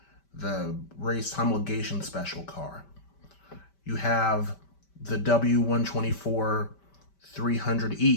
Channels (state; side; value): late; right; 5.1 ms